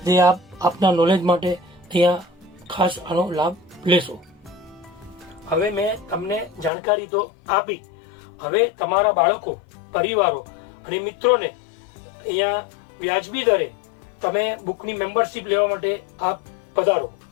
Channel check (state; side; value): drops out; right; at 6.7 s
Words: જે આપ આપના નોલેજ માટે ત્યાં ખાસ આનો લાભ લેશો. હવે મેં તમને જાણકારી તો આપી. હવે તમારા બાળકો, પરિવારો અને મિત્રોને અહીંયા વ્યાજબી દરે તમે બુકની મેમ્બરશિપ લેવા માટે આપ પધારો.